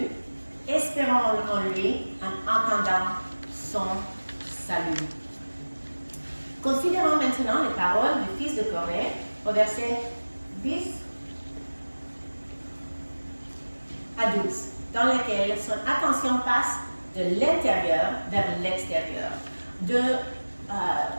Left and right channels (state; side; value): inverted; both; correlation -1.00